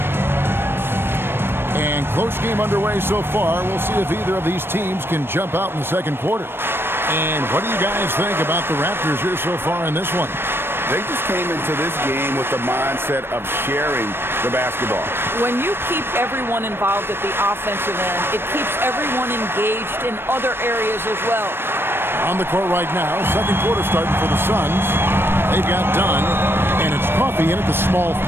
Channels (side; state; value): left; late; 0.11 ms